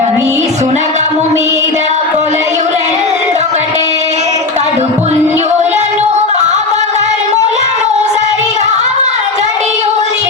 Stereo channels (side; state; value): right; quieter; 3.5 dB